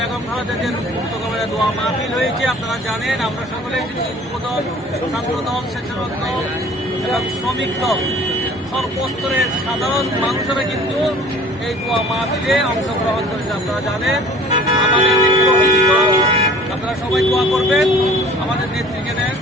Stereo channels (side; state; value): both; normal; correlation 0.48